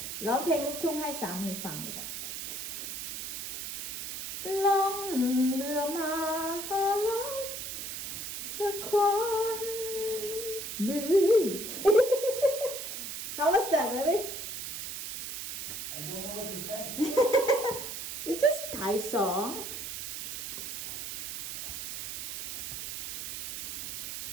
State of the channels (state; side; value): noise; right; hiss, 6 dB below the sound